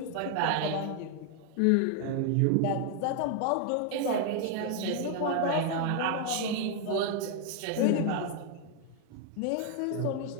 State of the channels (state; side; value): different; both; correlation 0.00